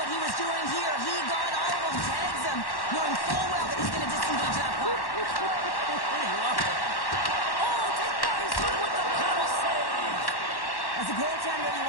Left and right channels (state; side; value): late; right; 1.1 ms